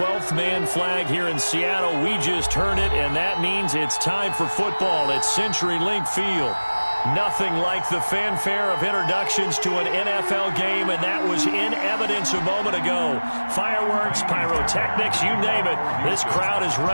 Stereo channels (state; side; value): inverted; both; correlation -1.00